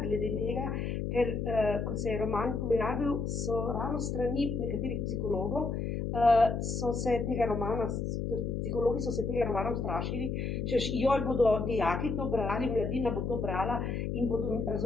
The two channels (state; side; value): noise; left; hum, 2 dB below the sound